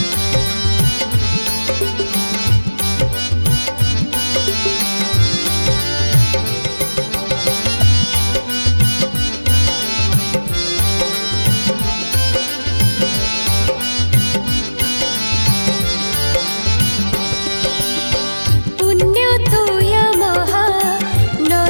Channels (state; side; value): inverted; both; correlation -1.00